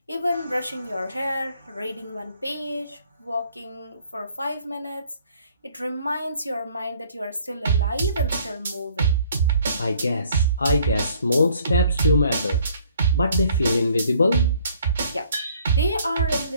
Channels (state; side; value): inverted; both; correlation -0.60